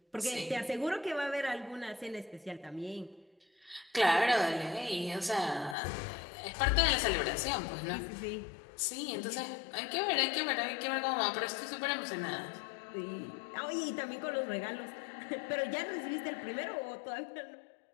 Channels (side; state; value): right; drops out; at 5.8 s